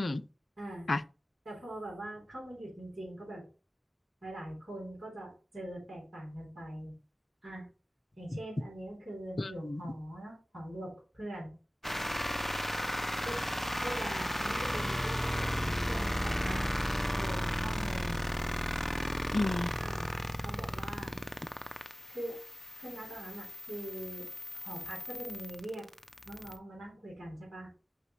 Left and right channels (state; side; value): normal; both; correlation 0.97